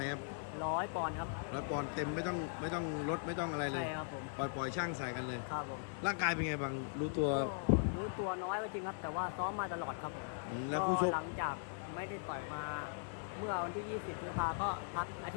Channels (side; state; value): right; silent; digital silence